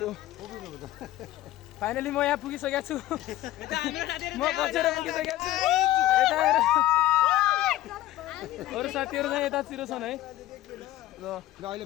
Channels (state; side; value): quieter; right; 14.9 dB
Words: फाइनली म यहाँ पुगिसकेको छु। म बचेर पुगिसकेको छु। यता हेर अरू साथीहरू चाहिँ यतातिर छन् है। ल अहिले